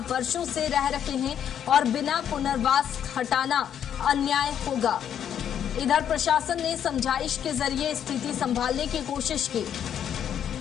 वर्षों से रह रहे हैं और बिना पुनर्वास हटाना अन्याय होगा। इधर प्रशासन ने समझाइश के जरिए स्थिति संभालने की कोशिश की।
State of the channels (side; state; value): right; quieter; 9.2 dB